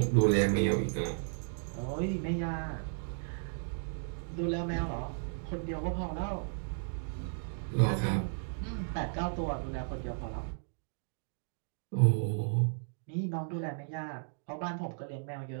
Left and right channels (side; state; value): left; silent; digital silence